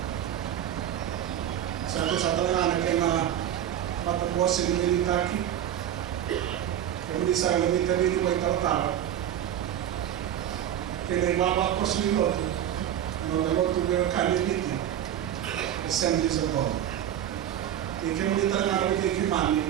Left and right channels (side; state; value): left; quieter; 10.7 dB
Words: Satu sa talangan na kaya matapuasin ng militaki kung di sa lamita rin mo itatara kaya ibaba ko sa niloto nagaloto pero kaniliti Assemblies of God. Ikan kita nak pergi ke mana?